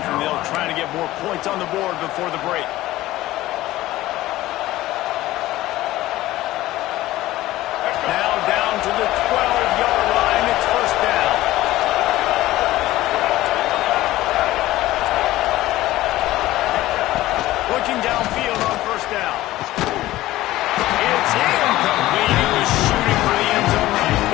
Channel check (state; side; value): quieter; right; 16.3 dB